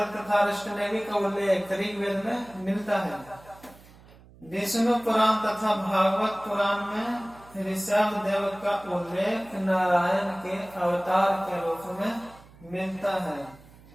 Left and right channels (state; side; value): noise; right; hum, 23 dB below the sound